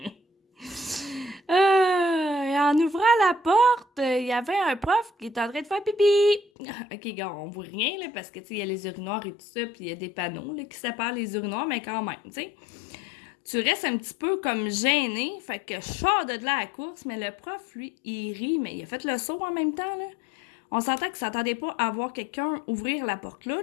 Et en ouvrant la porte, il y avait un prof qui était en train de faire pipi. OK, gars, on voit rien, là, parce que, tu sais, il y a les urinoirs et tout ça, puis il y a des panneaux, là, qui séparent les urinoirs, mais quand même, tu sais. Tu restes un petit peu comme gêné, fait que je sors de là à la course, mais le prof, lui, il rit, mais il a fait le saut en même temps, là. On s'entend qu'il s'attendait pas à voir quelqu'un ouvrir la porte là,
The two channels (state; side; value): drops out; right; at 6.5 s